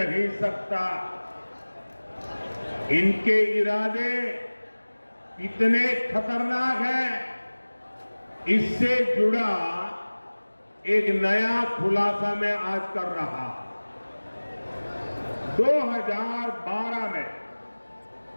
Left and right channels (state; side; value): inverted; both; correlation -1.00